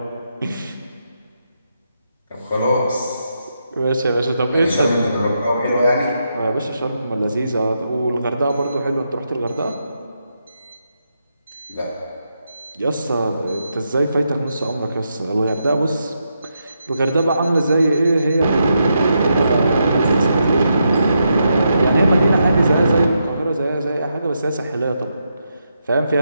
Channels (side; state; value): both; inverted; correlation -0.83